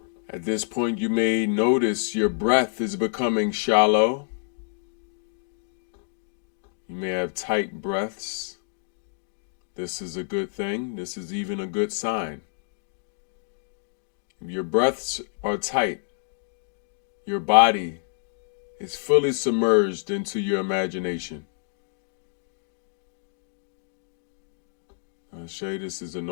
At this point, you may notice your breath is becoming shallow. You may have tight breaths. This is a good thing. This is even a good sign. If your breaths are tight, your body is fully submerged into your imagination. I'll show you this is a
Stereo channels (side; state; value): right; silent; digital silence